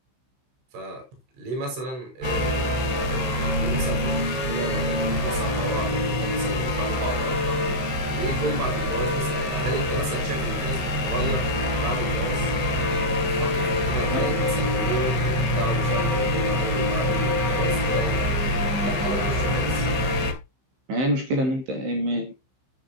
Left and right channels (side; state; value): left; late; 15 ms